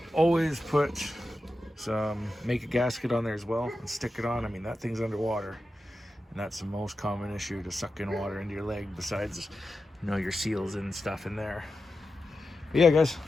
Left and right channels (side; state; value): both; normal; correlation 0.91